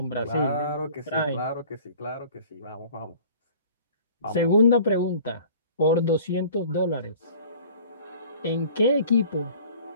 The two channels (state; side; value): inverted; both; correlation -0.48